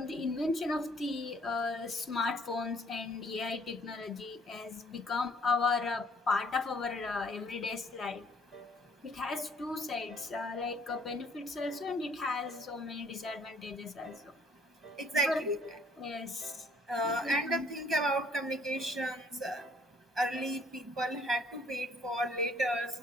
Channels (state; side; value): normal; both; correlation 0.60